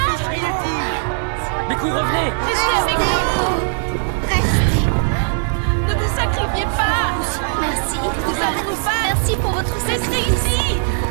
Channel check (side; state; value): left; silent; digital silence